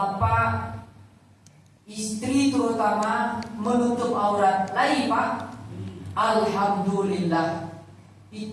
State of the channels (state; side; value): identical; both; correlation 1.00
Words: istri terutama menutup aurat. Lagi pak, alhamdulillah,